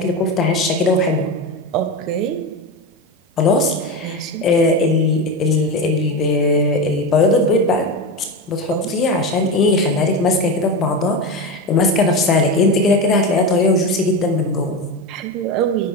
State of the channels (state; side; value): normal; both; correlation 0.19